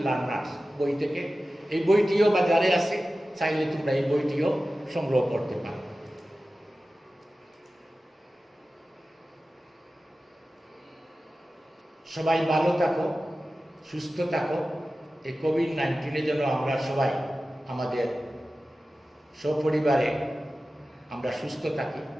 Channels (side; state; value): both; normal; correlation 0.95